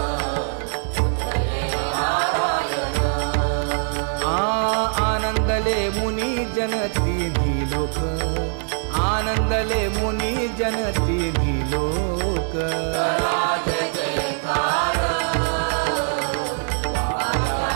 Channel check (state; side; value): silent; left; 56 dB below the other